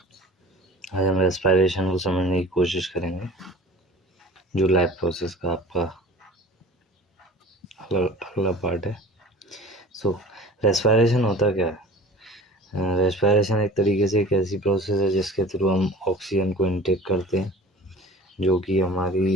आज हम respiration को समझने की कोशिश करेंगे, जो लाइफ प्रोसेस का आपका अगला पार्ट है। रेस्पिरेशन होता क्या है? रेस्पिरेशन एक तरीके से एक ऐसी प्रोसेस है जिसके थ्रू हम ऑक्सीजन को इनटेक करते हैं, जो कि हमारी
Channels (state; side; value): normal; both; correlation 0.43